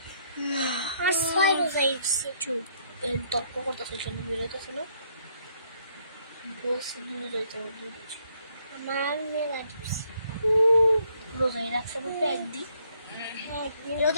আমার 6 রোজা হয়েছে চুপ তর্ক করতেছে কেন বেরোতেছে না বলছি 2 রোজা আমার মেলা দিচ্ছে রোজাই রাখছে বলতে একদিন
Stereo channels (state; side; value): inverted; both; correlation -0.69